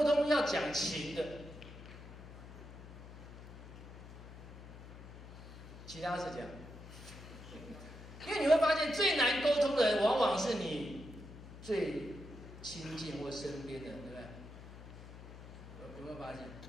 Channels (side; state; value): left; noise; hum, 14 dB below the sound